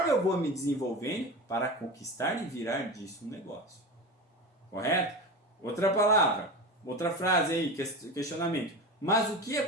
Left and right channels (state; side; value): normal; both; correlation 0.27